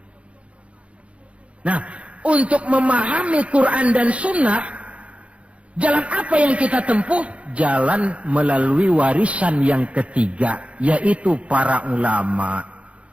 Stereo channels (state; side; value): late; left; 0.062 ms